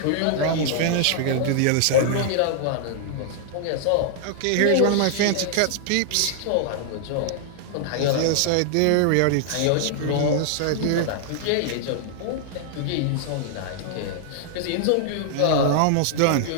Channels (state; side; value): different; both; correlation -0.01